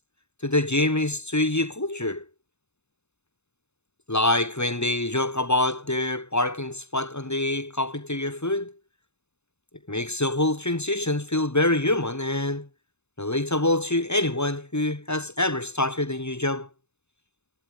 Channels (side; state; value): right; late; 0.81 ms